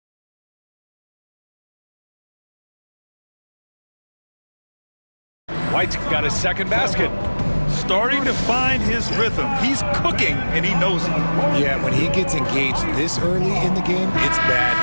White's got his second basket. Starting to find his rhythm. He's cooking, and he knows it. Yeah, when he gets engaged this early in the game, it's bad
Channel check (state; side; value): inverted; both; correlation -1.00